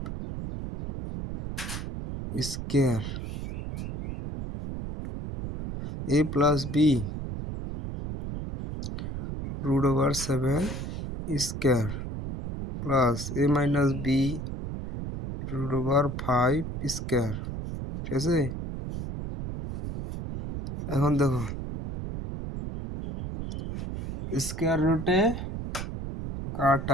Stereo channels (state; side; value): noise; right; rumble, 6 dB below the sound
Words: square। a plus b √7 square plus a minus b √5 square। ঠিক আছে, এখন দেখো স্কয়ার রুটে